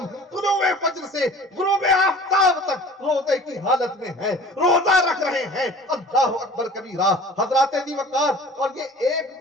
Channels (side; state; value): both; normal; correlation 0.45